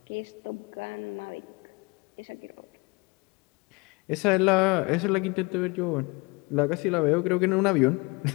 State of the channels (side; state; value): right; quieter; 27.1 dB